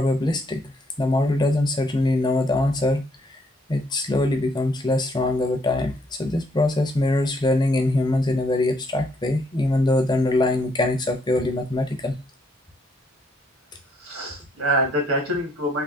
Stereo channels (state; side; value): normal; both; correlation 0.70